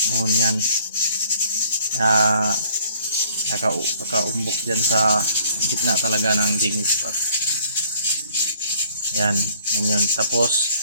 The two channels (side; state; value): both; inverted; correlation -0.59